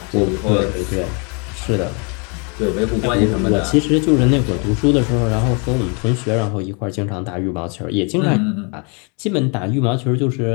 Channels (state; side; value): quieter; right; 34.7 dB